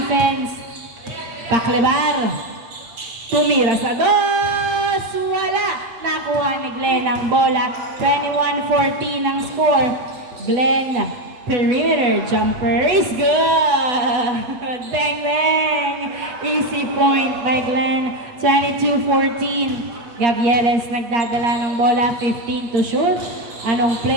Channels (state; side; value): late; left; 8.1 ms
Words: Paklebar. Tumira sa dos. Wala. Nakuha ni Glenn ang bola. 21-14 ang score. Glenn, perimeter jumper is good. Bang, bang. Easy point by Glenn. 22-14. Gavieres nagdadala ng bola. 15 to shoot. Anong